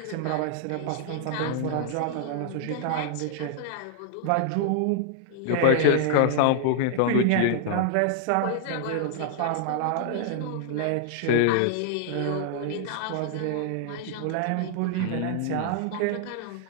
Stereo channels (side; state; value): both; different; correlation 0.00